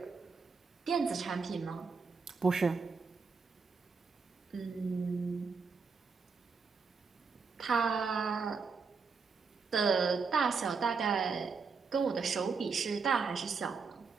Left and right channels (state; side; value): quieter; left; 5.1 dB